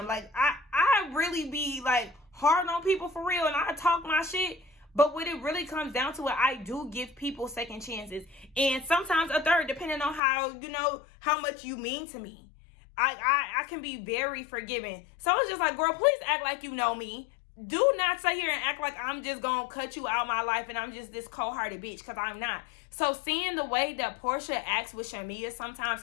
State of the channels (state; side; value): drops out; right; at 10.2 s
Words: like, I really be like hard on people for real, and I talk my shit. But when it really comes down to it, I do give people second chances, and sometimes a third, depending on how, you know, how much you mean to me. I can be very forgiving. So it's just like, girl, please act like you know me. Do not sit here and act like I'm just gonna cut you out of my life and I'm just this cold-hearted bitch, because I'm not. So seeing the way that Porsha acts with Shamia sometimes,